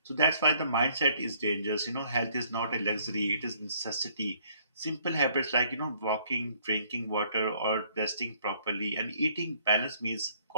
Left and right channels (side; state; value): both; inverted; correlation -0.63